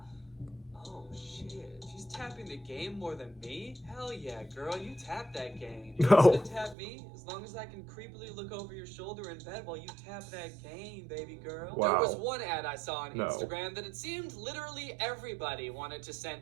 oh shit, she's tapping the game more than me. Hell yeah, girl, you tap that game. You No. gonna tap me as long as I can creepily look over your shoulder in bed while you tap that game, baby girl. Wow. There was one ad I saw on No. Instagram that it seemed literally everybody wanted to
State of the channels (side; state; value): left; drops out; at 6.8 s